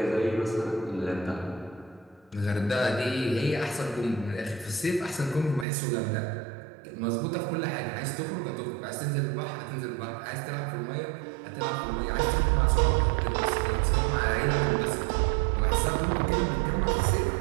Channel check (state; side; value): drops out; left; at 5.7 s